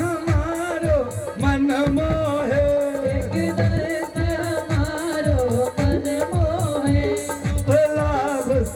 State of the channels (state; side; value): identical; both; correlation 1.00